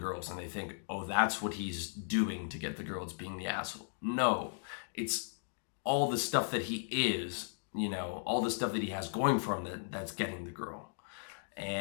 and they think, oh, that's what he's doing to get the girls, being the asshole. No, it's all the stuff that he is, all the stuff that he has going for him that's getting the girl.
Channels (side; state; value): right; silent; digital silence